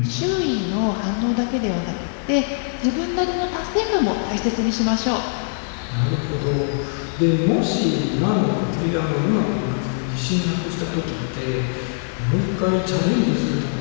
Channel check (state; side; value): silent; right; 62 dB below the other